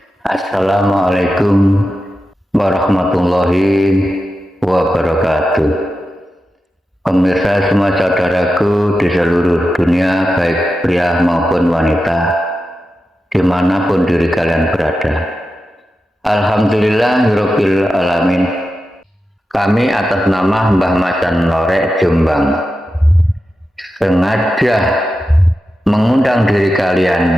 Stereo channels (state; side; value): normal; both; correlation 0.91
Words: Assalamualaikum warahmatullahi wabarakatuh. Pemirsa semua saudaraku di seluruh dunia, baik pria maupun wanita, dimanapun diri kalian berada. Alhamdulillahirabbil alamin. Kami atas nama Mbah Macan Lorek Jombang sengaja mengundang diri